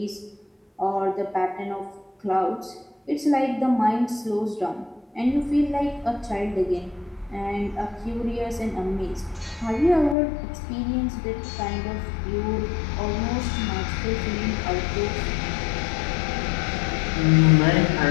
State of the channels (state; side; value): drops out; right; at 10.2 s